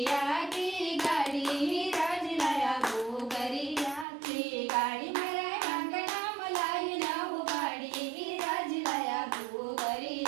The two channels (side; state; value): left; drops out; at 4.0 s